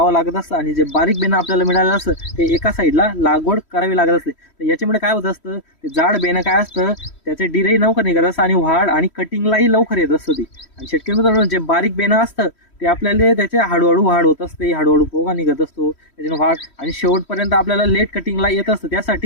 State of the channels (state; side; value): late; right; 3.1 ms